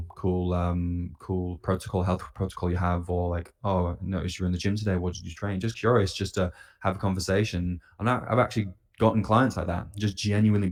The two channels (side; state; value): both; identical; correlation 1.00